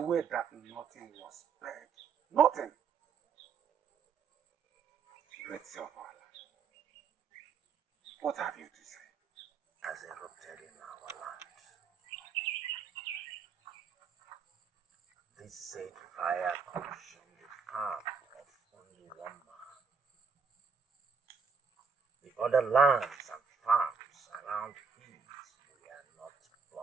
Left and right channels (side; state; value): left; quieter; 5.7 dB